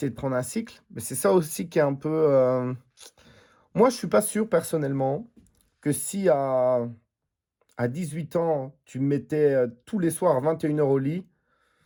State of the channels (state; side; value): identical; both; correlation 1.00